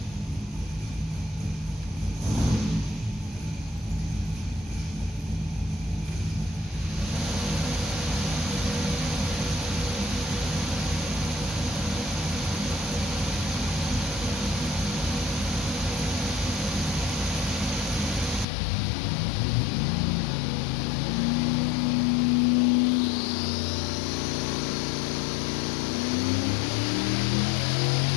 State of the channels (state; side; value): drops out; right; at 18.4 s